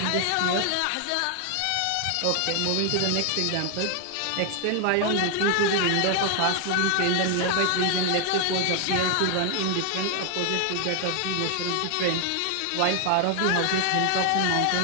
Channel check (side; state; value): both; different; correlation 0.00